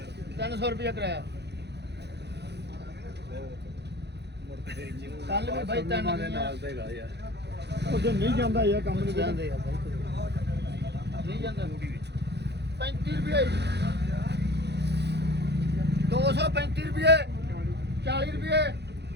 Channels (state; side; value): late; left; 0.49 ms